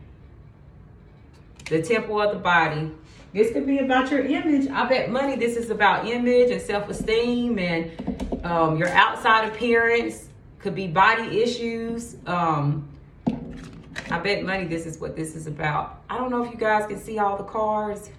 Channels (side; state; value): both; identical; correlation 1.00